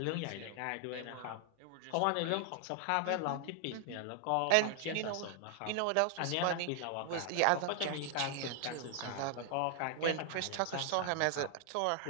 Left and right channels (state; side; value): different; both; correlation 0.00